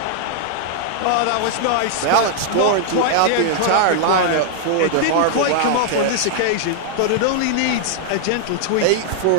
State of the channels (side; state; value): both; different; correlation -0.01